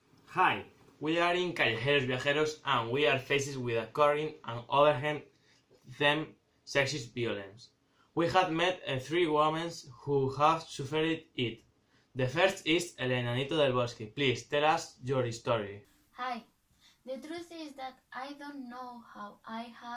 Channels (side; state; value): both; identical; correlation 1.00